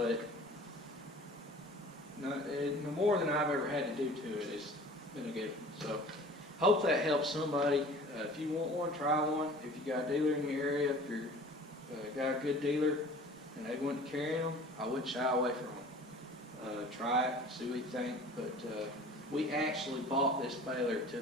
no more than I've ever had to do to it. It's been a good one. So hope that helps somebody. If you want one, try one. If you got a dealer in your area, if you're got a good dealer and they want to carry them, I wouldn't shy away from them. Try it, see what you think. But we actually bought this baler to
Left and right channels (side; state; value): both; normal; correlation 0.45